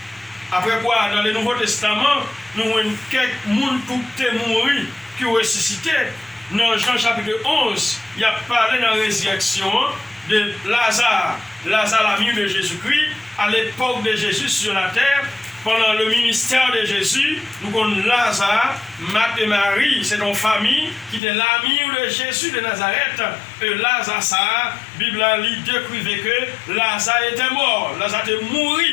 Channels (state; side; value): drops out; right; at 21.2 s